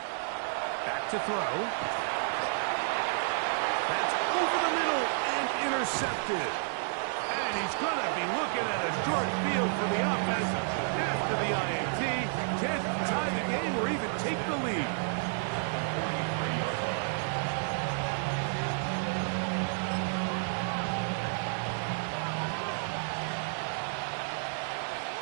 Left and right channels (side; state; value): left; silent; digital silence